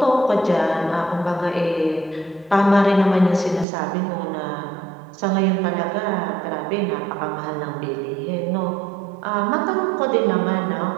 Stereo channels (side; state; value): left; drops out; at 3.7 s